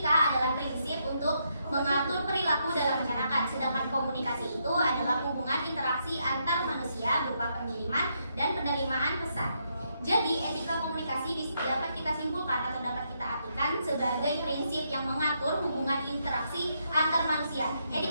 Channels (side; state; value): both; inverted; correlation -0.78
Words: adalah prinsip untuk mengatur perilaku dalam masyarakat. Sedangkan komunikasi itu adalah hubungan interaksi antar manusia berupa pengiriman dan penerimaan pesan. Jadi, etika komunikasi dapat kita simpulkan atau dapat kita artikan sebagai prinsip yang mengatur hubungan interaksi antar manusia.